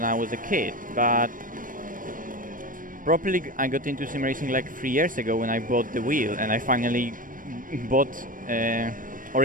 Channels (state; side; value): late; left; 0.40 ms